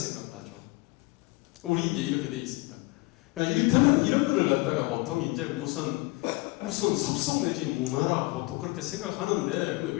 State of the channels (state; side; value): quieter; right; 23.9 dB